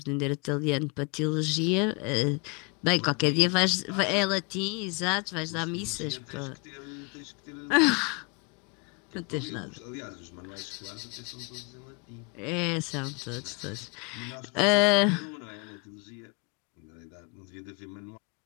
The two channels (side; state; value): right; quieter; 29.8 dB